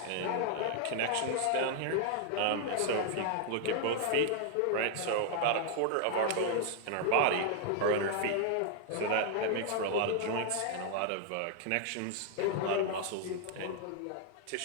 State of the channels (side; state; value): both; different; correlation 0.00